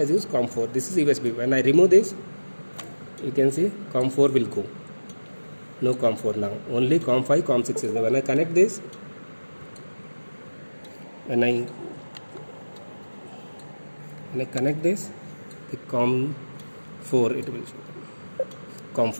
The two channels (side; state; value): both; inverted; correlation -1.00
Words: used COM4. This is USB. When I remove this, you can see COM4 will go. No COM4 now. Only COM5, COM6 is there. When I connect this, when I connect this, the COM4 it will show.